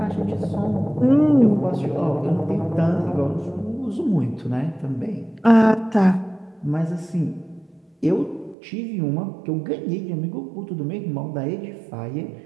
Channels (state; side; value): drops out; left; at 8.6 s